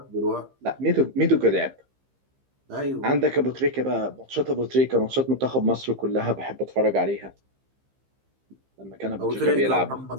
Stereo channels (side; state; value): left; late; 15 ms